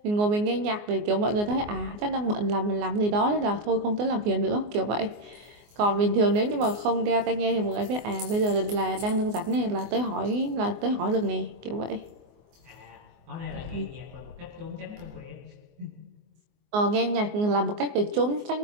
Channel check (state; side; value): late; left; 24 ms